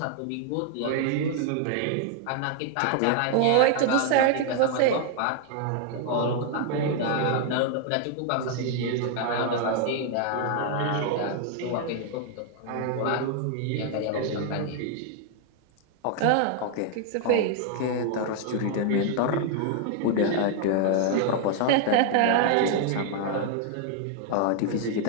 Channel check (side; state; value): both; different; correlation 0.00